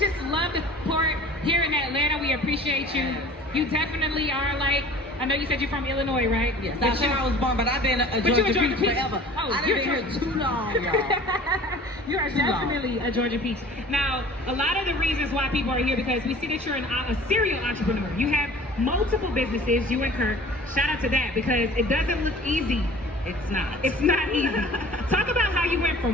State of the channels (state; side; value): normal; both; correlation 0.45